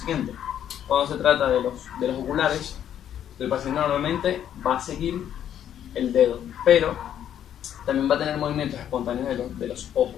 Cuando se trata de los oculares, el paciente normalmente va a seguir el dedo, pero también va a tener movimientos espontáneos de los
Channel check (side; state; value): right; quieter; 10.1 dB